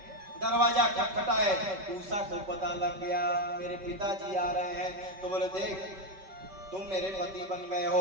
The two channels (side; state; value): left; late; 5.2 ms